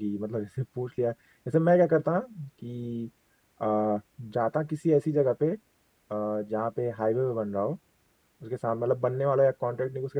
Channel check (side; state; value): both; identical; correlation 1.00